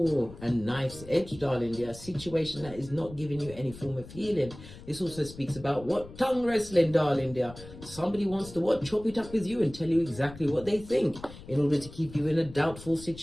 a knife's edge, darling dear. A situation that is not giving you any form of healing. This also speaks about what? Tongue wrestling, darling dear. Somebody wants to chop it up with you and tell you exactly what they think in order to keep you in a doubtful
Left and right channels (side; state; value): left; noise; rumble, 17 dB below the sound